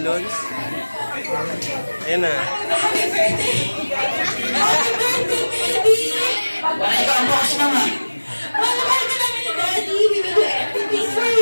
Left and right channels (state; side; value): inverted; both; correlation -1.00